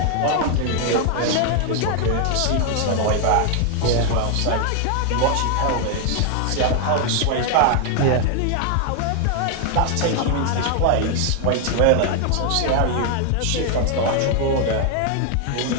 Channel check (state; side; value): different; both; correlation 0.00